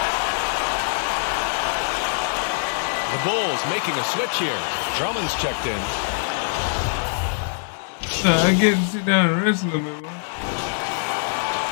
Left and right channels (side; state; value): right; silent; digital silence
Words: The Bulls making a switch here. Drummond's checked in. I get to sit down and rest a little bit, man.